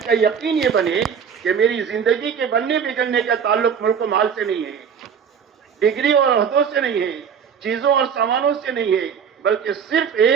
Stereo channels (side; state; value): left; quieter; 7.2 dB